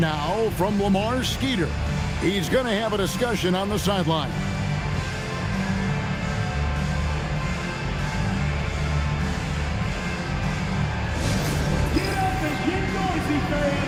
from Lamar Skeeter. He's going to have a discussion on the sideline. Get up and get noisy,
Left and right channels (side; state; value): both; identical; correlation 1.00